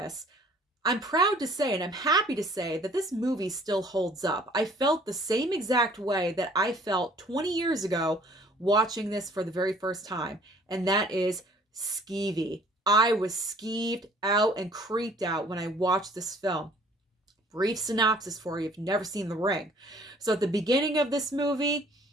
I'm proud to say, and I'm happy to say, that this movie still holds up. I felt the same exact way that I felt 20 years ago watching this for the very first time, and that is skeevy. I was skeeved out and creeped out when I watched this film. Brief synopsis for you if you've never seen The Ring. So at the beginning of this movie,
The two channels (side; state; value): both; normal; correlation 0.55